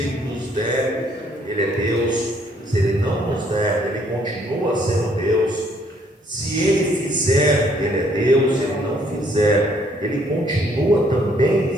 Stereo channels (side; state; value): both; normal; correlation 0.65